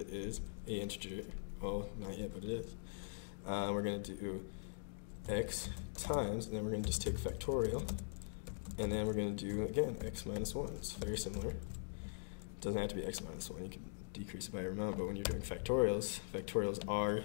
is an integer. Well, not yet, but it is. We're going to do x times, and then we're going to just take factorial, and then we're going to do, again, x minus 1. It's very similar. It doesn't have to be x minus 1. You can decrease it by your amount, but when you're doing factorials, factorials are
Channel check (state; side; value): silent; right; digital silence